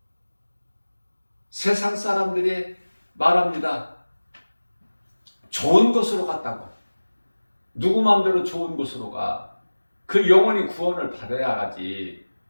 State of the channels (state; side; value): inverted; both; correlation -1.00